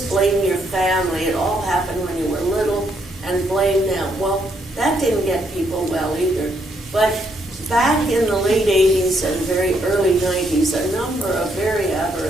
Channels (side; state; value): both; normal; correlation 0.74